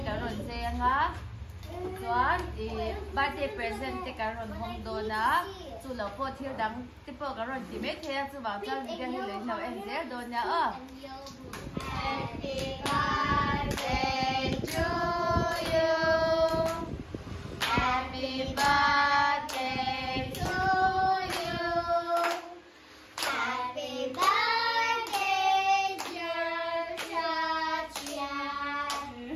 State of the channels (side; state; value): both; identical; correlation 1.00